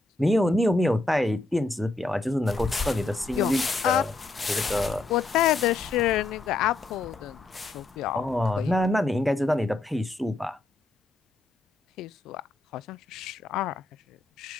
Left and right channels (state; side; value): quieter; right; 3.1 dB